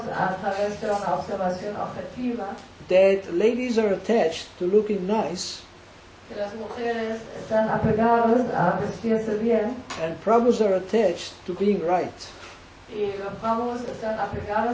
a través de una observación objetiva that ladies are attached to looking nice que las mujeres están apegadas a vestirse bien and Prabhus are attached to being right. y los Prabhus están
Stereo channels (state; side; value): identical; both; correlation 1.00